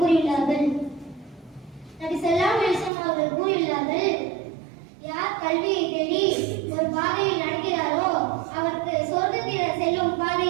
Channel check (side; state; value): left; drops out; at 2.9 s